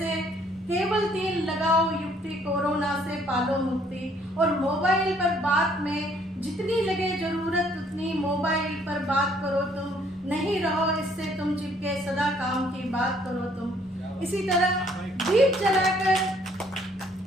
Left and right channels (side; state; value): both; normal; correlation 0.63